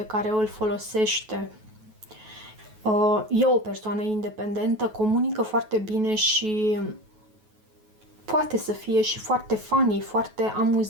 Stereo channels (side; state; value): left; late; 9.3 ms